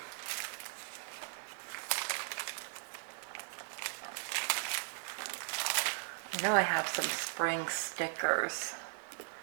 I know I have some spring stickers,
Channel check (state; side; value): silent; left; 52 dB below the other